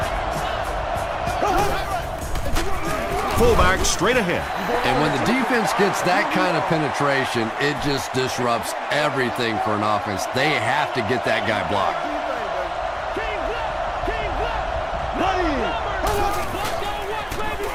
fullback straight ahead. And when the defense gets that kind of penetration, it just disrupts everything for an offense. They have to get that guy blocked.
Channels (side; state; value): both; identical; correlation 1.00